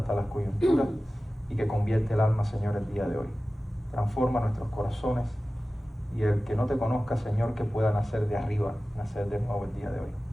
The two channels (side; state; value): both; normal; correlation 0.96